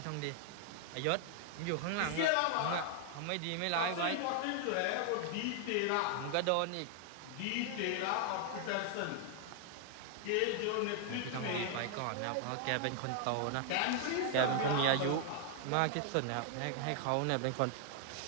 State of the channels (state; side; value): different; both; correlation 0.00